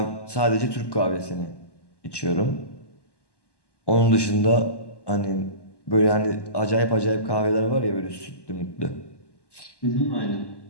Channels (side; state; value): right; late; 1.1 ms